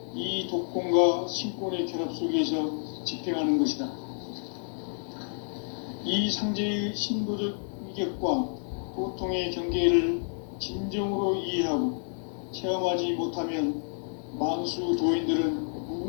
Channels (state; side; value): silent; right; 58 dB below the other